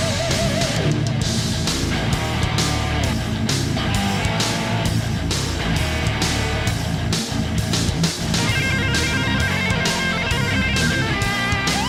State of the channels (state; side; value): identical; both; correlation 1.00